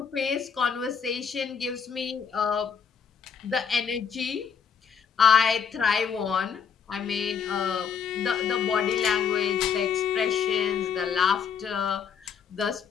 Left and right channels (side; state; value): right; quieter; 6.9 dB